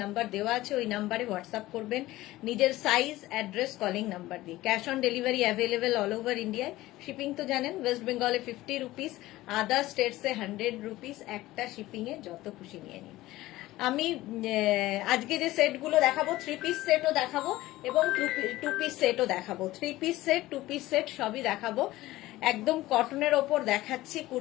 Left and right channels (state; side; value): quieter; right; 17.1 dB